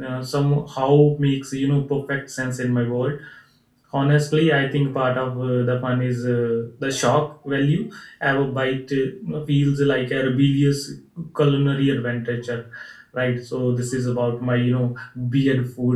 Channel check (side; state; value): both; identical; correlation 1.00